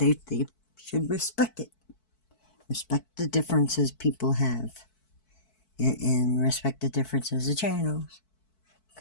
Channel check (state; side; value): late; right; 4.6 ms